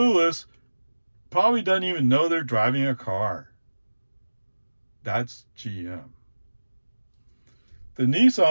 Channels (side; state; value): both; inverted; correlation -1.00